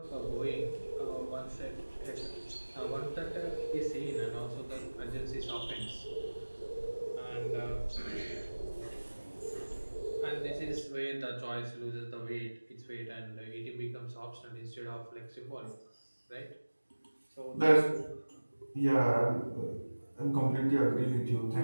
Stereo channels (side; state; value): both; inverted; correlation -1.00